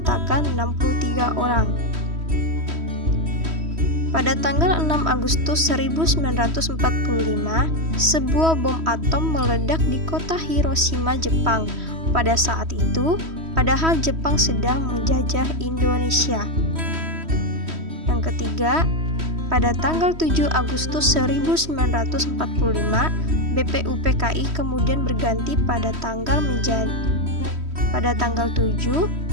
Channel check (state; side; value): late; left; 3.1 ms